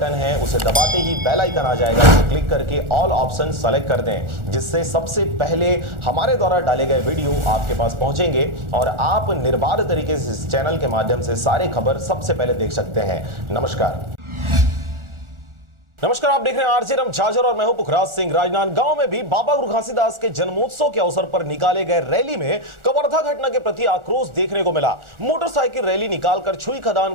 है, उसे दबाते ही बेल आइकन आ जाएगा, उसे क्लिक करके ऑल ऑप्शन सेलेक्ट कर दें, जिससे सबसे पहले हमारे द्वारा डाले गए वीडियो आपके पास पहुंचेंगे और आप निर्बाध तरीके से इस चैनल के माध्यम से सारे खबर सबसे पहले देख सकते हैं। नमस्कार, आप देख रहे हैं आरजे रमझाझर और मैं हूं पुखराज सिंह। राजनांदगांव में भी बाबा गुरु घासीदास के जन्मोत्सव के अवसर पर निकाले गए रैली में कवर्धा घटना के प्रति आक्रोश देखने को मिला। मोटरसाइकिल रैली निकालकर छुई खदान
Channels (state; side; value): late; left; 1.4 ms